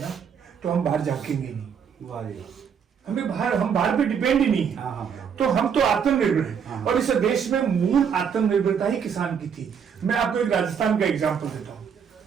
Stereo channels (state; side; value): quieter; left; 7.2 dB